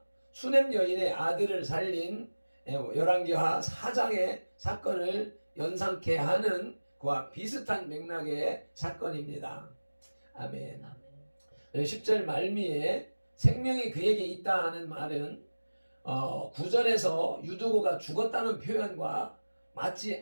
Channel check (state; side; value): inverted; both; correlation -1.00